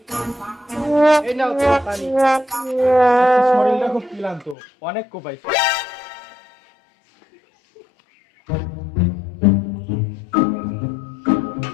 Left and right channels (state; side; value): drops out; right; at 4.5 s